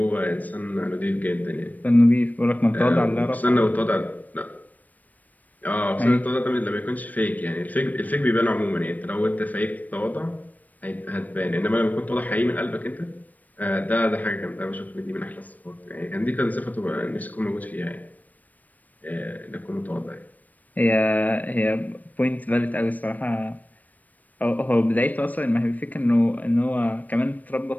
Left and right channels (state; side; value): late; right; 0.080 ms